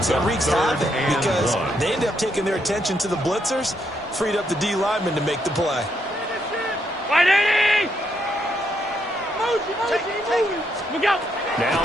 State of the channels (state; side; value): normal; both; correlation 0.77